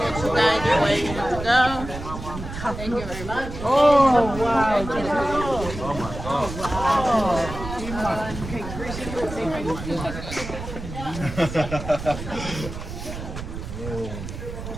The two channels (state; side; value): noise; right; rumble, 9 dB below the sound